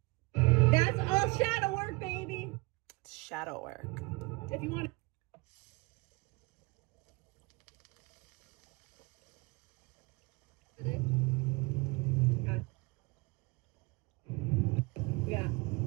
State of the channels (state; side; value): quieter; left; 26.1 dB